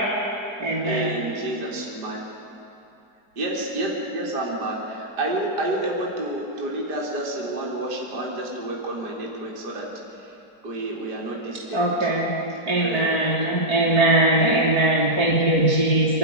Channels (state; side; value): late; left; 4.4 ms